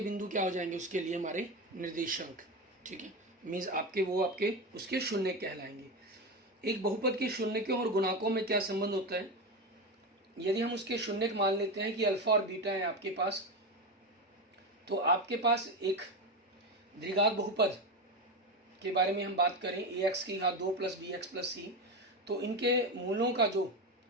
क्या हो जाएंगे, उसके लिए हमारे निर्देशांक, ठीक है। मीन्स आपके उसके शून्य कहलाएंगे। एक बहुपद के शून्यकों और गुणाकों में क्या संबंध होता है। यदि हम उसके शून्यक मान लेते हैं कि अल्फा और बीटा है आपके पास, तो आपके पास एक द्विघात बहुपद के बारे में हम बात करें, ax की घात 2 प्लस bx प्लस c, तो इनके मूलों का जो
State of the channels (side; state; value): both; normal; correlation 0.17